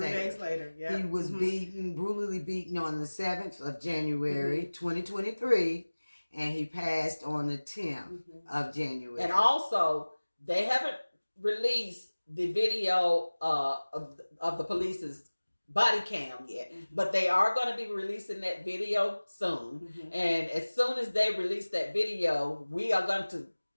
3 days later. Yeah, he was brutally beaten on the 7th of January, 2023. And he passed on the 10th of January. And also, they haven't released the video of the police's body cam yet, but they are going to be releasing that video soon. And as soon as they release that video, we are going to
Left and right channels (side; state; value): both; inverted; correlation -1.00